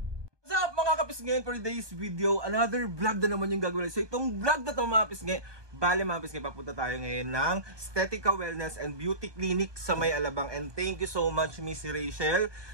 Ngayon for today's video, another vlog na naman yung gagawin. So itong vlog na to mga pisngi, bale mga pisngi, papunta tayo ngayon ng Estetica Wellness and Beauty Clinic sa May Alabang. And thank you so much Miss Rachel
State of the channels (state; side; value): late; left; 1.2 ms